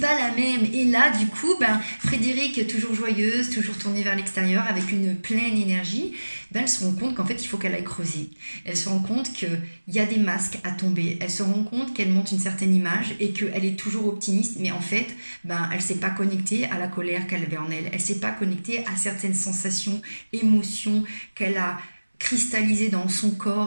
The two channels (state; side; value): inverted; both; correlation -1.00